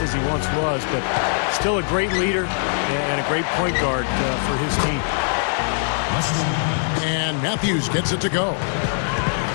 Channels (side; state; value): right; silent; digital silence